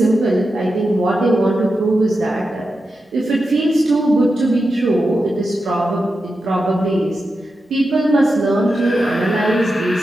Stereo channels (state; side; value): normal; both; correlation 0.90